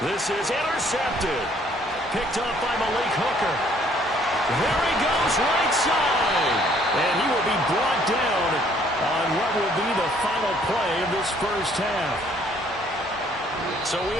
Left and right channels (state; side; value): normal; both; correlation 0.62